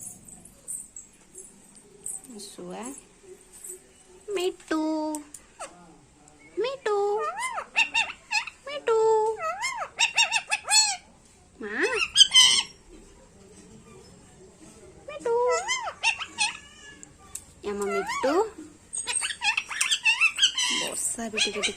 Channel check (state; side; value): identical; both; correlation 1.00